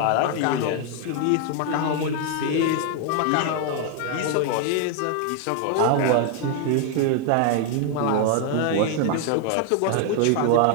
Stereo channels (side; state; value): both; different; correlation 0.00